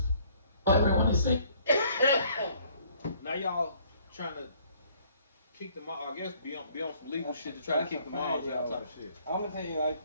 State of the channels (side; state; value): both; inverted; correlation -0.61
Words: Everyone is saying. Now y'all trying to kick them out, I guess be on some legal shit to try to kick them out type of shit. I'm gonna tell you like